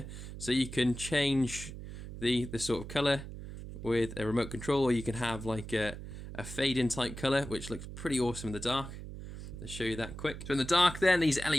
so you can change the sort of colour with a remote control, or you can have like a fade in type colour, which looks pretty awesome in the dark. Let's show you that quick. So in the dark then, these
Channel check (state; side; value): noise; right; hum, 10 dB below the sound